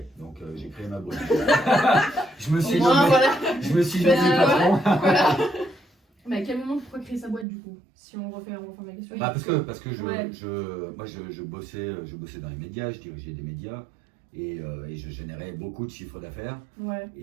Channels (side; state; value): left; drops out; at 7.5 s